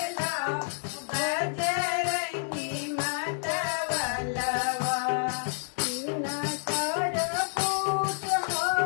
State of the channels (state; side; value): silent; right; digital silence